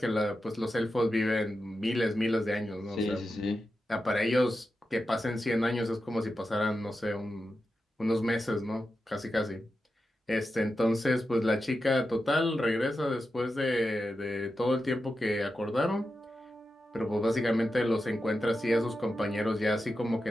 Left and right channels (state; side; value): normal; both; correlation 0.90